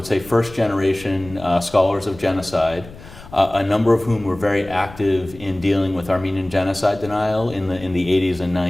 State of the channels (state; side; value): noise; left; rumble, 18 dB below the sound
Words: say, first-generation scholars of genocide, a number of whom were very active in dealing with Armenian genocide denial in the 80s and